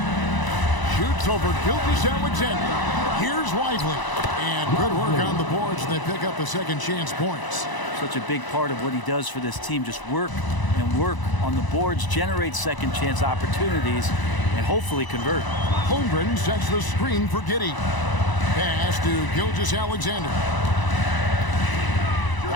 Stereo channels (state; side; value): late; right; 1.0 ms